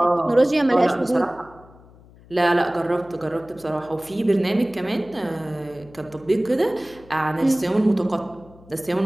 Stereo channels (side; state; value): left; noise; hum, 24 dB below the sound